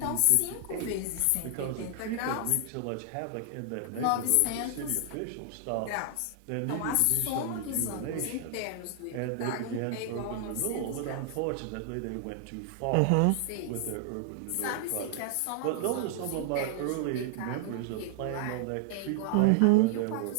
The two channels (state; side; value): different; both; correlation -0.01